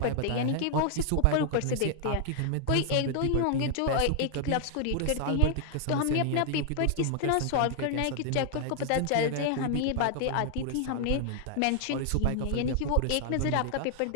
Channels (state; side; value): different; both; correlation 0.00